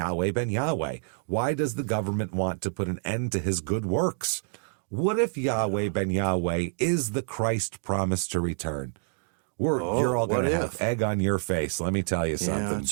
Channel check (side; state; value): left; silent; digital silence